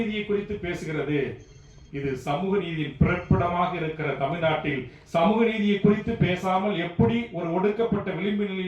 குறித்து பேசுகிறது. இது சமூக நீதியின் பிறப்பிடமாக இருக்கிற தமிழ்நாட்டில் சமூக நீதியை குறித்து பேசாமல் எப்படி ஒரு ஒடுக்கப்பட்ட விளிம்பு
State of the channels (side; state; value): both; identical; correlation 1.00